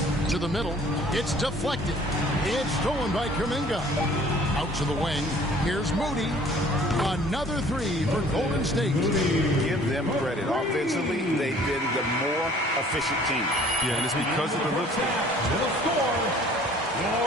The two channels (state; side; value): normal; both; correlation 0.53